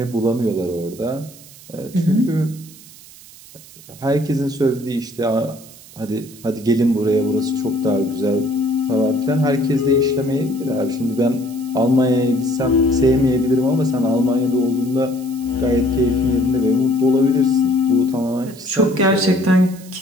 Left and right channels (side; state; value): right; noise; hiss, 20 dB below the sound